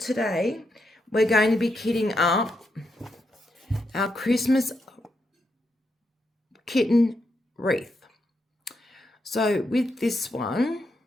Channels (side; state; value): both; normal; correlation 0.82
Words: we're going to be kitting up our Christmas kitten wreath. So with this one,